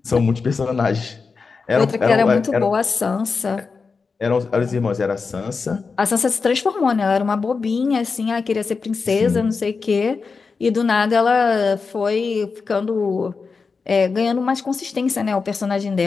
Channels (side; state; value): right; quieter; 4.8 dB